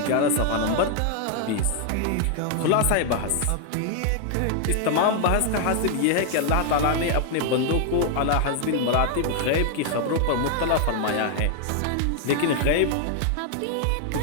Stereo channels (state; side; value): different; both; correlation 0.00